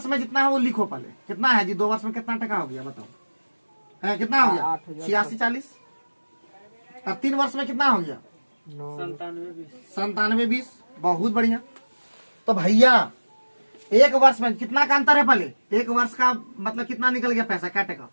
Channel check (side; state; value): both; inverted; correlation -1.00